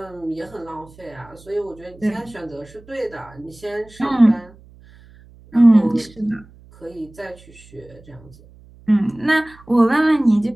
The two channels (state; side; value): noise; right; hum, 24 dB below the sound